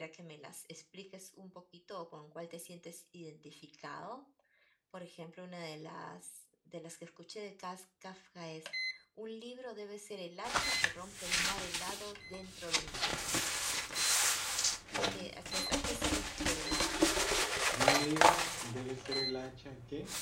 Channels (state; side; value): identical; both; correlation 1.00